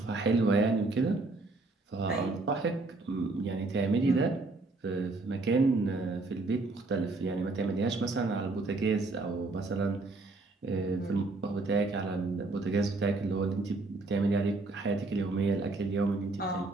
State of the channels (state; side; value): quieter; left; 3.4 dB